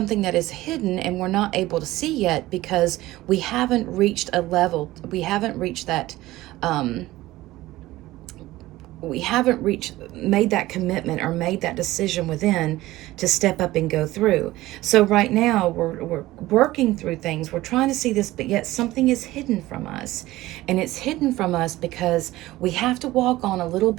that is hidden and we're not able to see yet because we haven't reached a level. We haven't reached that. Made that commitment or made that decision within to step up and go through. So right now we're working through things. We're trying to see this, but yet something is hidden from us. And it's hidden from us because we have to walk on a little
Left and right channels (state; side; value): quieter; left; 17.3 dB